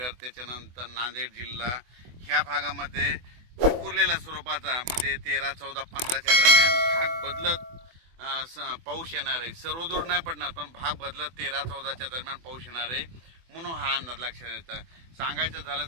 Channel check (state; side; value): late; left; 24 ms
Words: त्याच्यानंतर नांदेड जिल्हा ह्या भागामध्ये विखुरलेल्या स्वरूपाचा म्हणजे 13, 14, 15च्या दरम्यान भाग बदलत पाऊस येणार आहे। सर्वदूर नाही पडणार पण भाग बदलत 13, 14च्या दरम्यान पाऊस येणार आहे म्हणून हा अंदाज लक्षात येतो। सांगायचं झालं